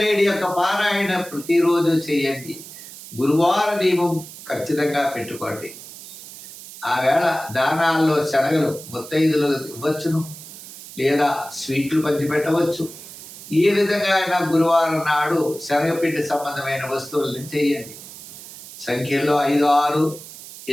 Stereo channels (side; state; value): right; noise; hiss, 15 dB below the sound